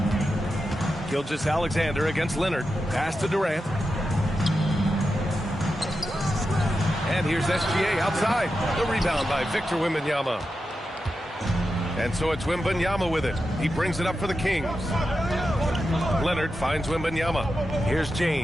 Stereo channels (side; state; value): both; normal; correlation 0.90